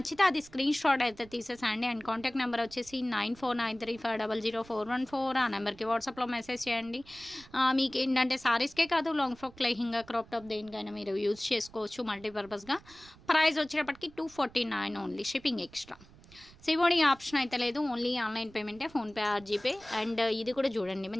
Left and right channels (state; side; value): noise; right; rumble, 23 dB below the sound